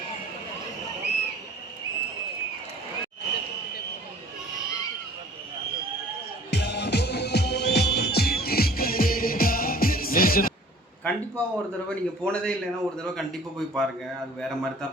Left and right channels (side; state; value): both; normal; correlation 0.50